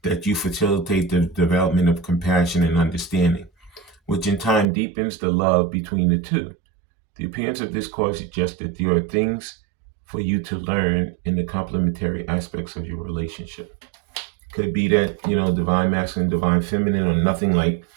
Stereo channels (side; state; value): left; drops out; at 4.7 s